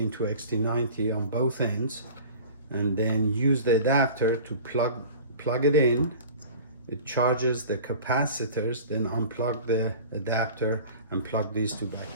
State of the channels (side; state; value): both; inverted; correlation -0.40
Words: to XT90 on both ends, and then use the adapter to plug it in. It charges the capacitors, then unplug the adapter and plug these two back.